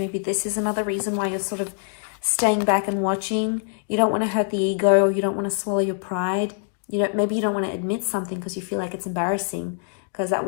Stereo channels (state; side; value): silent; right; digital silence